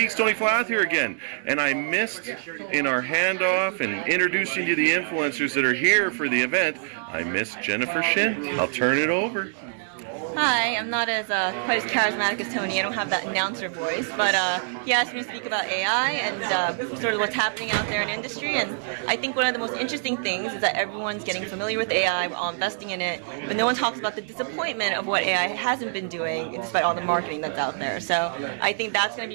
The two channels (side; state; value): left; silent; digital silence